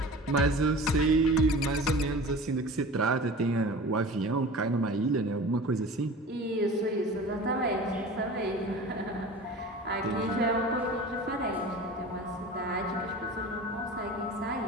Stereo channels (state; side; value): normal; both; correlation 0.37